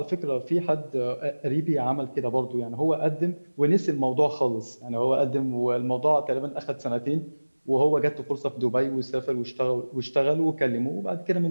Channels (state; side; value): inverted; both; correlation -1.00